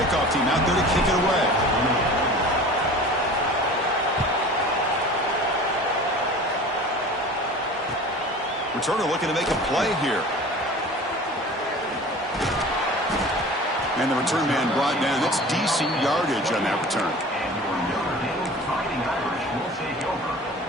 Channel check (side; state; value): both; normal; correlation 0.40